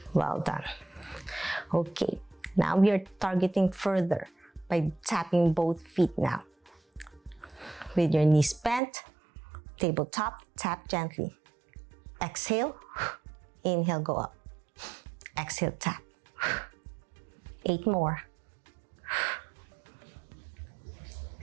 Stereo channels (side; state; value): left; drops out; at 8.8 s